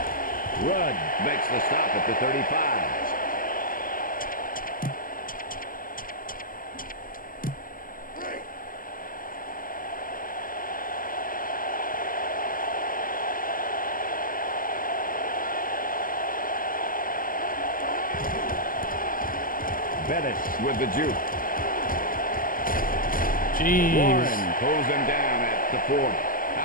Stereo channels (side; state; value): right; late; 0.41 ms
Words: Rudd makes the stop at the 35. Bettis with the juke. Jeez. Warren pulls him down at the 40.